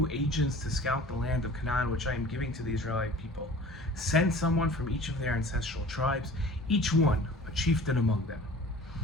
agents to scout the land of Canaan, which I am giving to the Israelite people. Send someone from each of their ancestral tribes, each one a chieftain among them."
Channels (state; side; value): normal; both; correlation 0.44